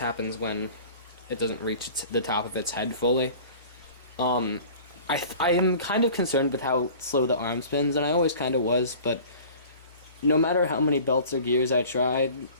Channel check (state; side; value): inverted; both; correlation -0.43